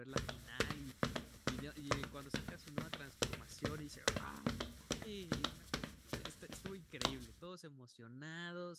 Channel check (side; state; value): both; identical; correlation 1.00